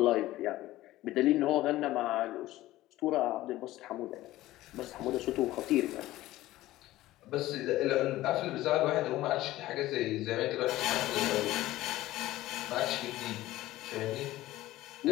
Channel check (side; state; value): right; quieter; 16.2 dB